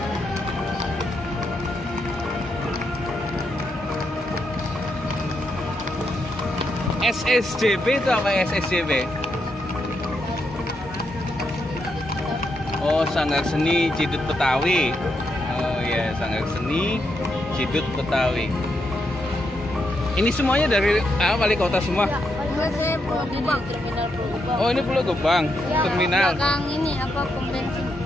SSJB itu apa SSJB? Oh, Sanggar Seni Cidut Betawi. Oh iya, Sanggar Seni Cidut Betawi. Ini semuanya dari wali kota semua. Enggak, saya Pulau Gebang, terminal Pulau Gebang. Oh, ini Pulau Gebang, Ya, terminal belakang ini apa pom bensin.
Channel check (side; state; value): both; normal; correlation 0.81